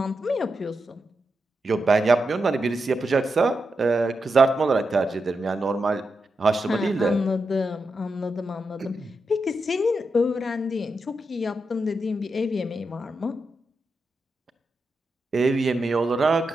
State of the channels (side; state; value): both; normal; correlation 0.87